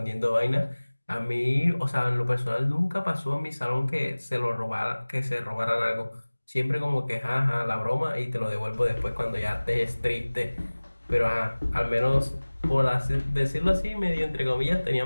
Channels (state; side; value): inverted; both; correlation -1.00